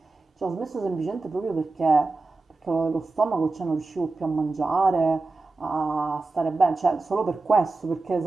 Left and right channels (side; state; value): left; quieter; 3.5 dB